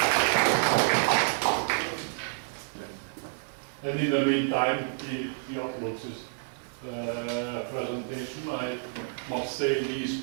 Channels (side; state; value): left; silent; digital silence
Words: And in the meantime, he uploads his presentation. I must say these